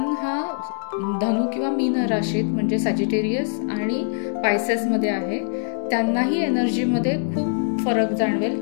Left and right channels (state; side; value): silent; right; digital silence